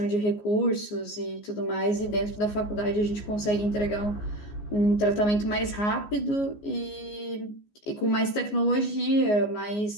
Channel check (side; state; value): right; late; 14 ms